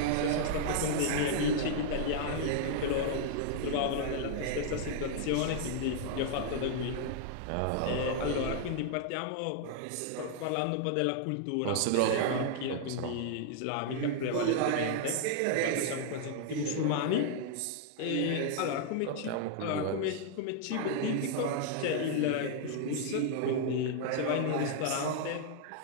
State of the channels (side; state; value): both; different; correlation -0.01